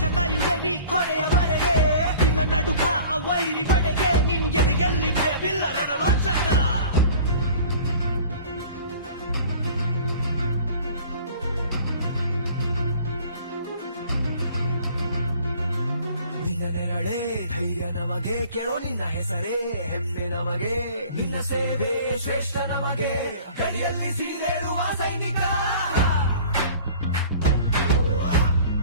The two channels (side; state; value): both; inverted; correlation -0.47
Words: ಕಾಯುವೆ ನೀ ಕೊನೆಯವರೆಗೆ ನಿನ್ನ ನಡುಕ ಆ ವೈರಿ ಪಡೆಗೆ ನಿನ್ಗೆದೆಯಲ್ಲಿ ಭಯವಿಲ್ಲ ರಣರಾಜಕ ನಿನ್ನ ನಡೆ ಧೈರ್ಯ ನಮಗೆ ಕೇಳೋ ನಿನ್ನ ಹೆಸರೇ ಹೆಮ್ಮೆ ನಮಗೆ ನಿನ್ನ ಸೇವೆ ಶ್ರೇಷ್ಠ ನಮಗೆ ಗಡಿಯಲ್ಲಿ ಸಿಡಿದೇಳುವ ಸೈನಿಕ